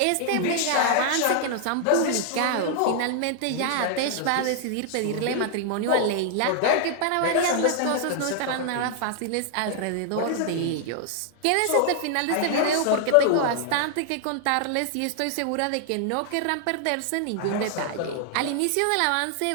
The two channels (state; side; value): different; both; correlation 0.00